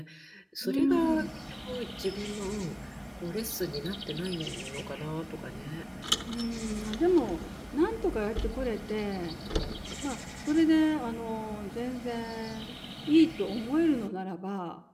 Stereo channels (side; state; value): both; identical; correlation 1.00